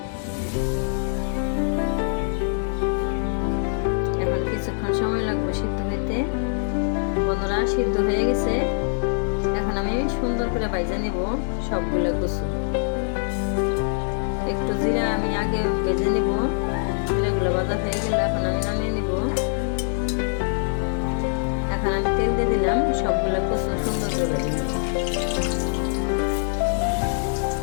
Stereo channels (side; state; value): right; silent; digital silence